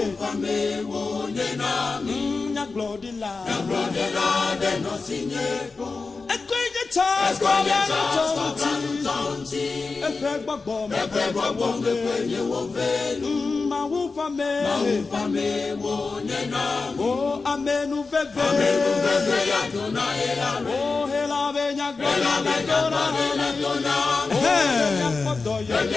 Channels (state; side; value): quieter; right; 4.2 dB